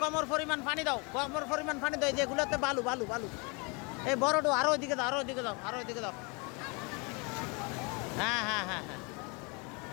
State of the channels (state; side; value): quieter; right; 30.9 dB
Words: কমর পরিমাণ পানি দাও, এই যেগুলোতে বালু এই বড় আরো ওইদিকে দাও, আরো ওইদিকে দাও। হ্যাঁ